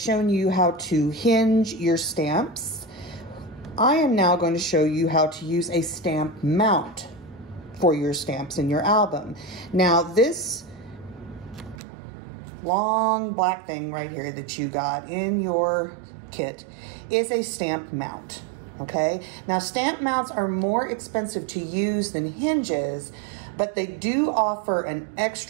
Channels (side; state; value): left; drops out; at 11.8 s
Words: you how to hinge your stamps, I am now going to show you how to use a stamp mount for your stamps in your album. Now, this long black thing right here that you got in your kit is a stamp mount, okay? Now, stamp mounts are more expensive to use than hinges, but they do offer an